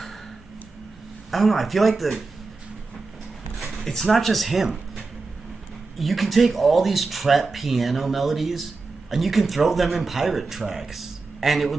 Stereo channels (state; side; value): quieter; left; 3.9 dB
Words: I don't know, I feel like it's not just him. You can take all these trap piano melodies and you can throw them in pirate tracks. And it